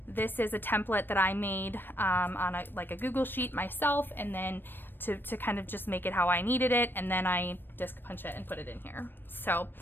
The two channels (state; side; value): late; right; 0.096 ms